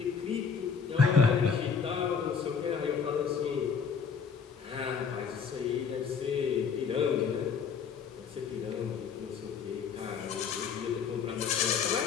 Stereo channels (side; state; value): right; quieter; 6.3 dB